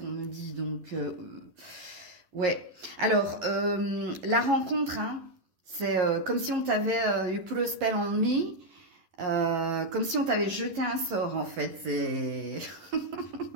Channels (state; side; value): late; left; 11 ms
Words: on me dit. Donc... ouais. Alors, la rencontre, hein, c'est comme si on t'avait you put a spell on me, comme si on t'avait jeté un sort, en fait.